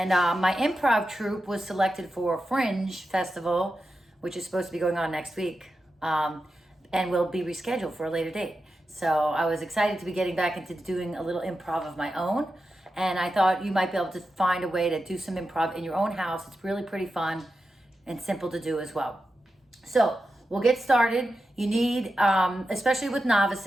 my improv troupe was selected for Fringe Festival, which is supposed to be going on next week, and will be rescheduled for a later date. So I was excited to be getting back into doing a little improv of my own. And I thought you might be able to find a way to do some improv in your own house. It's really pretty fun and simple to do as well. So we'll get started. You need, especially with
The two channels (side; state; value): both; normal; correlation 0.90